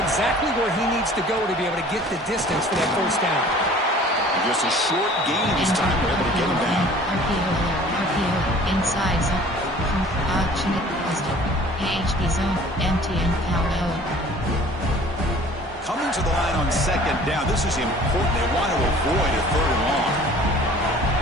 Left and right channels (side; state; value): both; normal; correlation 0.49